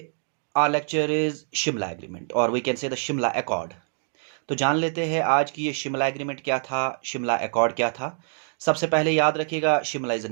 our lecture is Shimla Agreement or we can say the Shimla Accord. तो जान लेते हैं आज की ये शिमला एग्रीमेंट क्या था, शिमला अकॉर्ड क्या था। सबसे पहले याद रखिएगा Shimla is a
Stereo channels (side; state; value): left; silent; 62 dB below the other